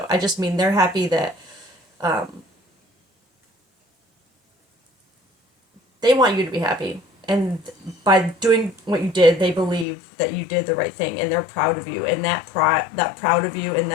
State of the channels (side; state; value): right; drops out; at 9.9 s